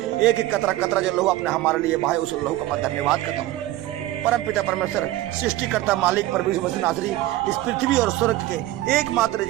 एक एक कतरा कतरा जो लहू अपने हमारे लिए भाई उस लहू का मैं धन्यवाद करता हूँ। परम पिता परमेश्वर सृष्टिकर्ता मालिक परमेश्वर मसीह नासरी इस पृथ्वी और स्वर्ग के एकमात्र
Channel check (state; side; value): quieter; left; 15.7 dB